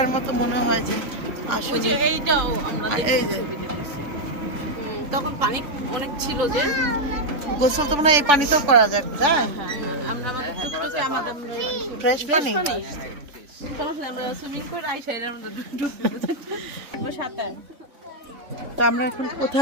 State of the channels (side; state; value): left; late; 3.5 ms